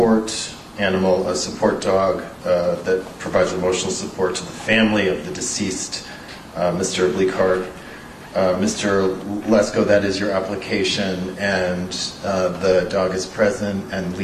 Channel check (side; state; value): both; identical; correlation 1.00